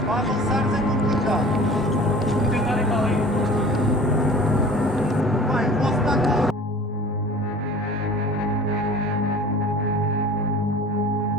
Para avançares é complicado. Vou tentar ir para ali. Vai, posso estar com...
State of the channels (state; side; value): normal; both; correlation 0.43